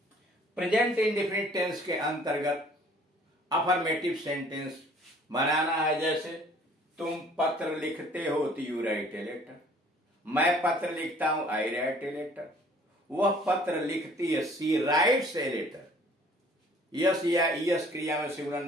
प्रेजेंट इंडेफिनिट टेंस के अंतर्गत अफर्मेटिव सेंटेंस बनाना है। जैसे तुम पत्र लिखते हो तो यू राइट ए लेटर। मैं पत्र लिखता हूं आई राइट ए लेटर। वह पत्र लिखती है सी राइट्स ए लेटर। यस या यस क्रिया में सिंगुलर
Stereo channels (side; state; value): both; normal; correlation 0.55